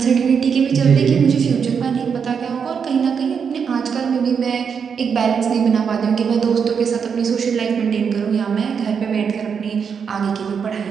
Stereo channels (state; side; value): quieter; left; 6.6 dB